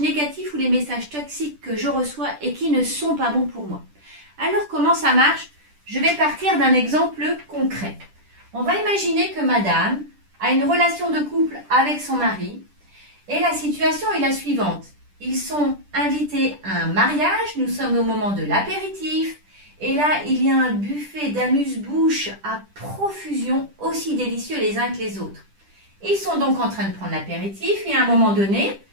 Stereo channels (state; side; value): late; left; 10 ms